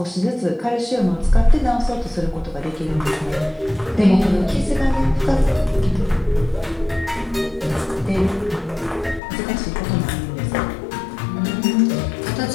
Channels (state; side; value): drops out; right; at 9.2 s